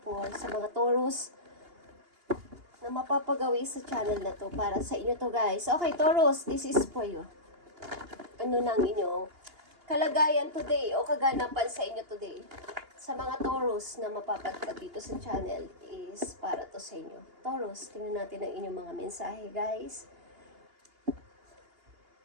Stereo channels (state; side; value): late; left; 2.8 ms